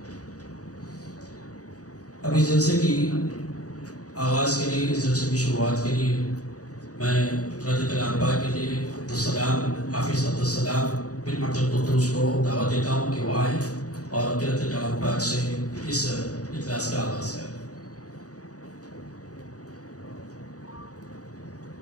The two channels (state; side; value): late; right; 0.67 ms